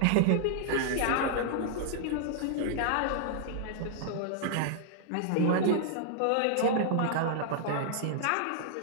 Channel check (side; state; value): both; different; correlation -0.01